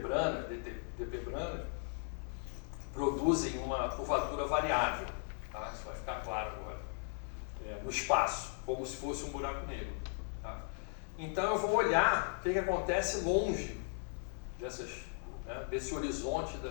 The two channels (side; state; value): right; silent; 53 dB below the other